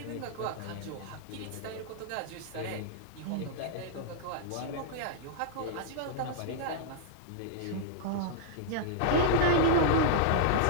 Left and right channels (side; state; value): both; different; correlation -0.01